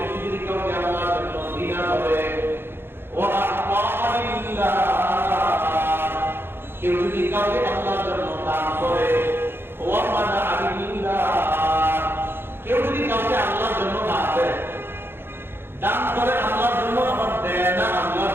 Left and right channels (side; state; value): left; late; 0.11 ms